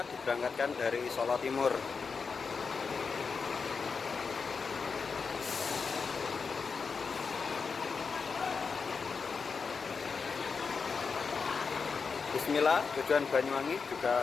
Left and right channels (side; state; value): right; quieter; 5.2 dB